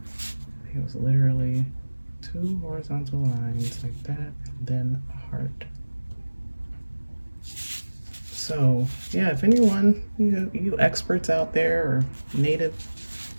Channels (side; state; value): both; inverted; correlation -1.00